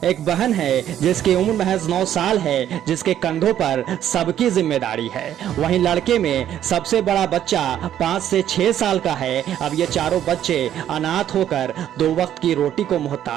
एक बहन है जिसकी उम्र महज 9 साल है, जिसके कंधों पर सबकी जिम्मेदारी है। वहीं लड़के में सबसे बड़ा बच्चा 5 से 6 साल का है। अब ये चारों बच्चे अनाथ होकर 2 वक्त की रोटी को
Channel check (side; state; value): left; quieter; 10.9 dB